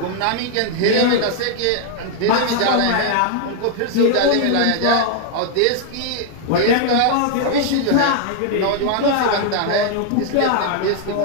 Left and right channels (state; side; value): different; both; correlation 0.00